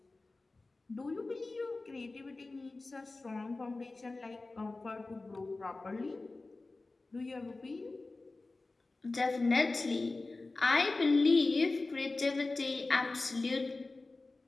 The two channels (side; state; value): right; quieter; 3.3 dB